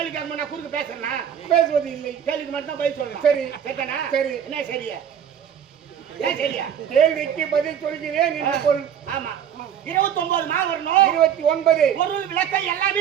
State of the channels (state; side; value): quieter; left; 8.8 dB